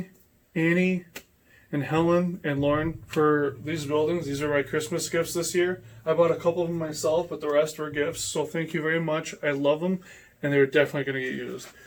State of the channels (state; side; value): identical; both; correlation 1.00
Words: Annie, and Helen and Lauren for these buildings. These are my Christmas gifts this year. I bought a couple of them myself, but the rest were gifts. So thank you very much. I love them, and they're definitely going to get used.